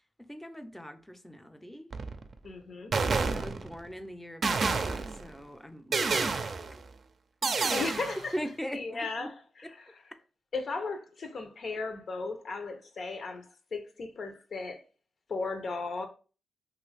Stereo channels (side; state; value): both; normal; correlation 0.85